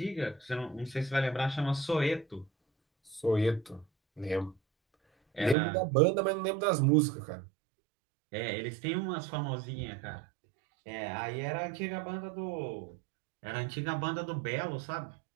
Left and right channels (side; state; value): left; drops out; at 5.6 s